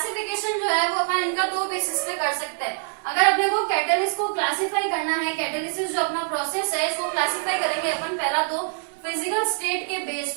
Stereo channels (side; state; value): left; silent; digital silence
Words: जो है वो अपन इनका दो बेसिस पे कर सकते हैं। अगर अपने को कैटलिस्ट को क्लासिफाई करना है, कैटलिसिस जो अपना प्रोसेस है इसको क्लासिफाई करेंगे अपन पहला तो फिजिकल स्टेट के